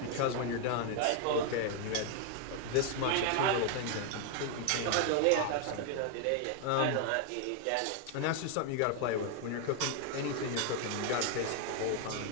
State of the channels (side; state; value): both; different; correlation 0.00